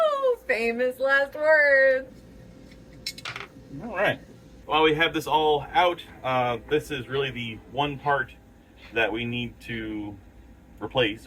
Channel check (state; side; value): identical; both; correlation 1.00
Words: Famous last words. All right. While we have this all out, this is really the one part that we need to